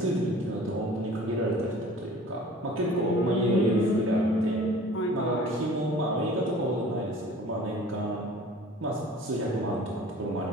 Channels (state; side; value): normal; both; correlation 0.46